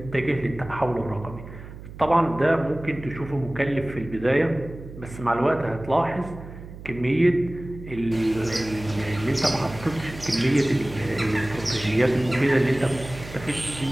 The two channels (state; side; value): noise; right; hum, 14 dB below the sound